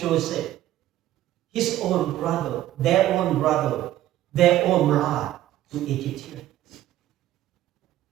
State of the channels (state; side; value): quieter; left; 13.7 dB